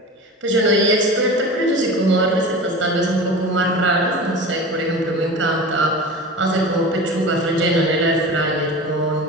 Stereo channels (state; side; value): normal; both; correlation 0.33